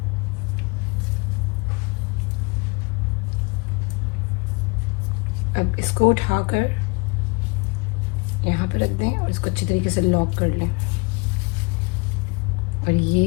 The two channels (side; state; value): right; quieter; 29.0 dB